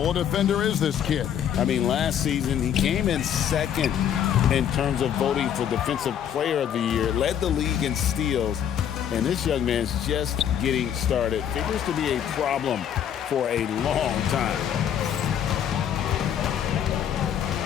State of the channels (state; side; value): quieter; right; 9.3 dB